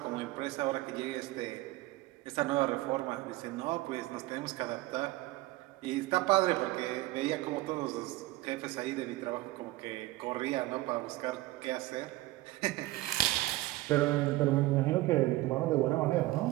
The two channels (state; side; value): quieter; left; 18.4 dB